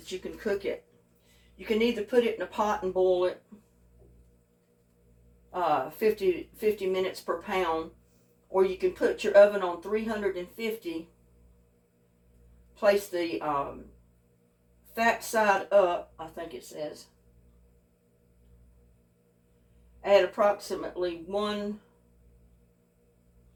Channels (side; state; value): both; identical; correlation 1.00